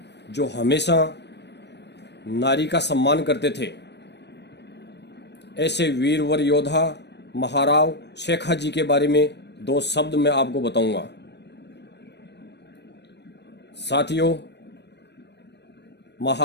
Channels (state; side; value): late; right; 0.50 ms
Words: जो हमेशा नारी का सम्मान करते थे। ऐसे वीरवर योद्धा महाराव शेखाजी के बारे में दो शब्द मैं आपको बताऊंगा। साथियों,